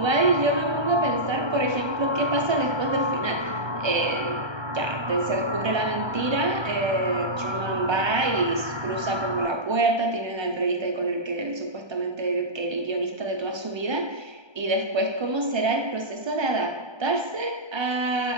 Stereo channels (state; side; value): late; left; 1.3 ms